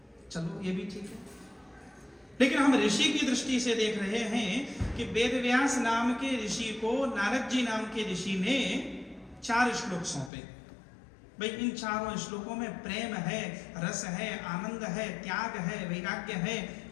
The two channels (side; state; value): right; drops out; at 10.3 s